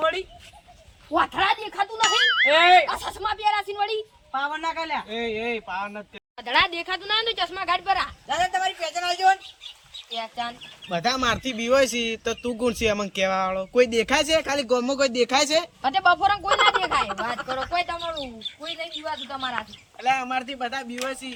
વળી વાથડા દેખાતું નહીં એ આ ચશ્મા પહેરાસીન વળી પાવર ના કાલ્યા એ પાવર નથી. વાથડા દેખાતું ના તો ચશ્મા ગાઢ પરા દાદા તમારી પહેચાન આવજો ને પહેચાન બધા મારથી બીવાય છે તો તું કોણ છે અમને કહેવા વાળો? કોઈ દેખાય છે? ખાલી ગામમાં કોઈ દેખાય છે? અતે બપોરે કોઈ ના દેખાય વાત કરો કોઈ તમારું કોઈ નહીં જીવાતું તમારાથી એટલે અમારથી બધા બીવાય છે.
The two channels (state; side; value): identical; both; correlation 1.00